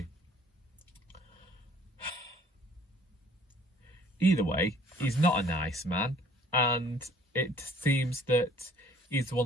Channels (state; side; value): normal; both; correlation 0.56